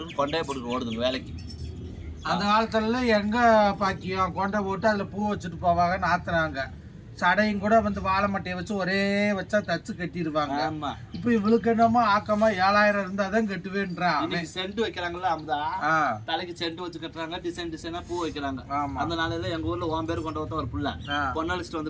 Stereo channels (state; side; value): identical; both; correlation 1.00